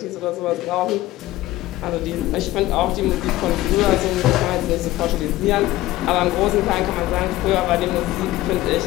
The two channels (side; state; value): right; quieter; 16.6 dB